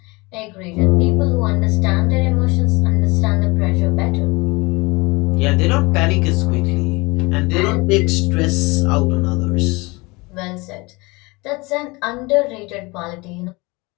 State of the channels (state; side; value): quieter; right; 25.0 dB